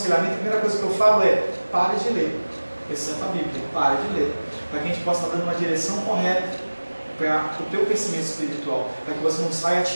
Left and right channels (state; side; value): inverted; both; correlation -1.00